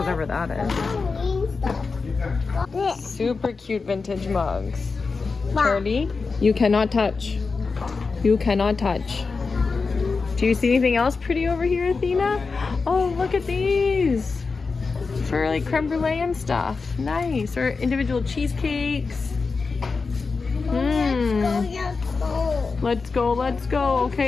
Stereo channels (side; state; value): right; quieter; 4.5 dB